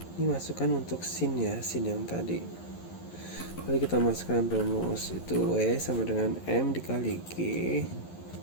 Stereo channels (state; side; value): late; right; 11 ms